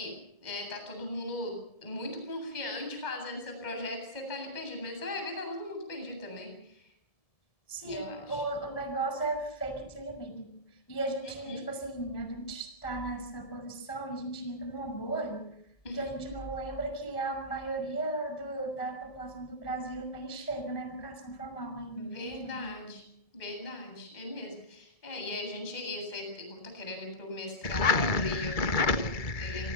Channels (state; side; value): late; right; 1.7 ms